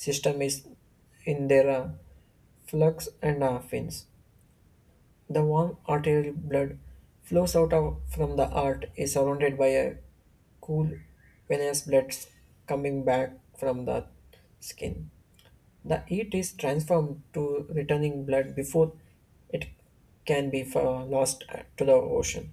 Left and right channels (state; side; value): identical; both; correlation 1.00